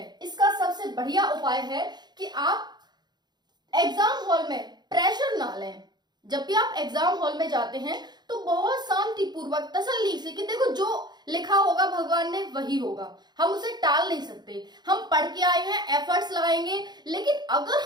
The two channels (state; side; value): late; left; 0.21 ms